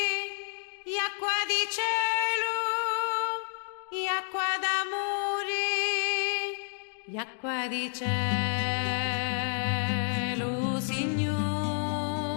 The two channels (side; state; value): right; silent; 58 dB below the other